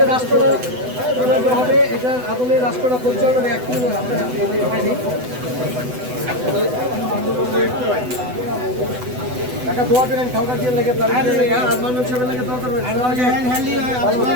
রাষ্ট্রটা হবে, এটার আদলে রাষ্ট্রটা পরিচালনা একটু টাকা দোয়া করেন খাওয়া দিয়ে লেগে তার লেগে আর মানুষ হিসেবে লেগে দোয়া করবেন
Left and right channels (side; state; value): left; late; 8.0 ms